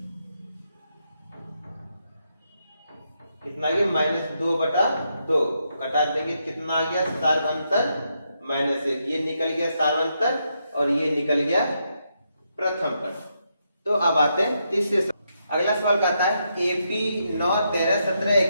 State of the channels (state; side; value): inverted; both; correlation -0.81